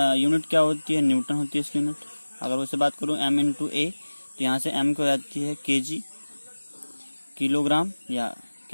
यूनिट क्या होती है। न्यूटन होती है इसकी यूनिट। अगर उससे बात करूं m इंटू ए, तो यहाँ से m को जाती है केजी, किलोग्राम, या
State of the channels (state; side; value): inverted; both; correlation -1.00